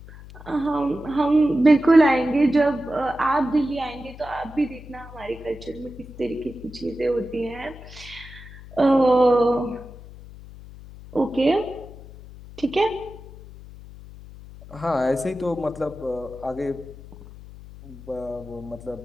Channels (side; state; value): left; noise; hum, 17 dB below the sound